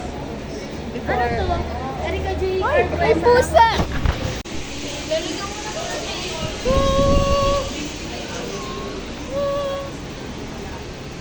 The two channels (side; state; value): both; identical; correlation 1.00